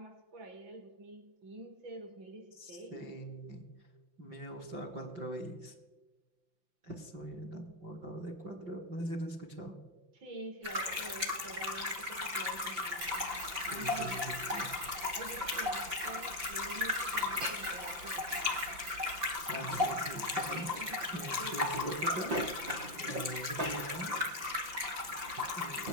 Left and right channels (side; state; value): left; late; 5.8 ms